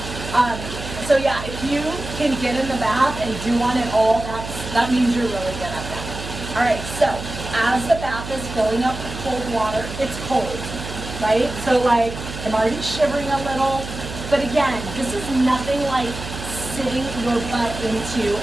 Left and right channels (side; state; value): right; noise; hum, 9 dB below the sound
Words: yeah, if you can get in the bath and do one at all, that means you're really good at that. All right, so as the bath is filling up with cold water, it's cold. Right? So I'm already shivering a little, but again, this is nothing like sitting your butt into